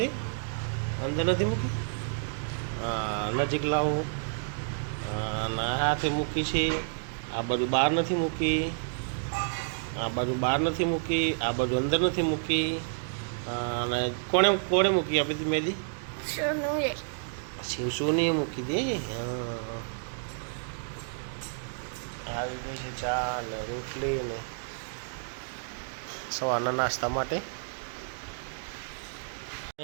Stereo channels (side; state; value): left; silent; digital silence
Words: અંદર નથી મૂકી. નજીક લાવો. હાથે મૂકી છે. આ બાજુ બહાર નથી મૂકી, આ બાજુ બહાર નથી મૂકી, આ બાજુ અંદર નથી મૂકી. અને કોણે કોણે મૂકી આપી હતી મહેંદી? સોનુએ. શિવસોનીએ મૂકી દે. આવી ગઈ છે ચા ને રોટલી ને સવારના નાસ્તા માટે.